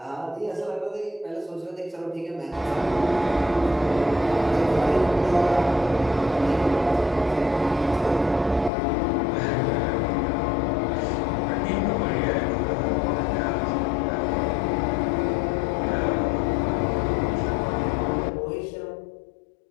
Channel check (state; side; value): drops out; right; at 8.7 s